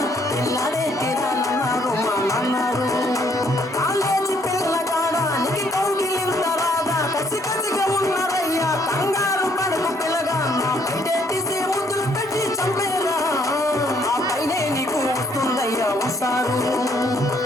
పిల్లాడే తీరాలన్నారు మా నాన్నారు college పిల్లగాడానికి కౌగిలింతరాగా కసి కసిగా ఉన్నారయ్యా కంగారు పడకు పిల్లగా నా పైటేసి ముద్దులు పెట్టి చంపేరా ఆ పైనే నీకు వస్తుందయ్యా వస్తారు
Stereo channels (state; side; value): normal; both; correlation 0.66